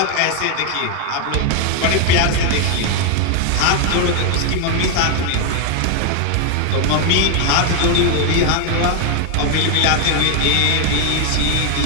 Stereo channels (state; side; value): different; both; correlation 0.01